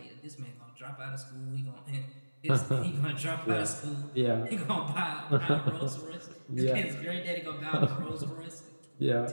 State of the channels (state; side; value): inverted; both; correlation -1.00